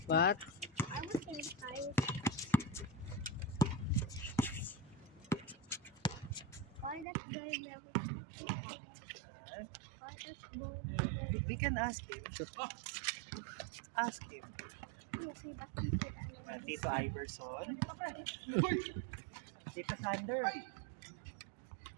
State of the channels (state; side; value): drops out; left; at 7.1 s